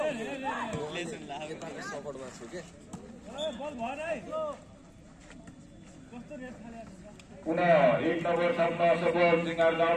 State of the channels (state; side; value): identical; both; correlation 1.00